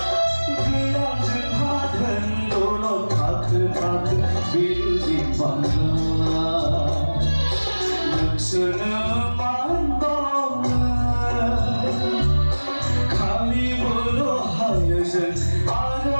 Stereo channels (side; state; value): both; inverted; correlation -1.00